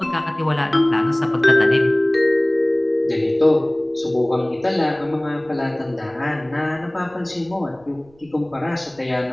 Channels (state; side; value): noise; right; rumble, 29 dB below the sound